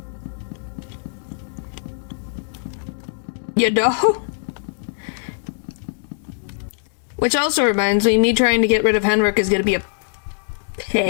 You know? Which also reminds me trying to get rid of Henrik is gonna be a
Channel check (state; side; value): silent; right; 64 dB below the other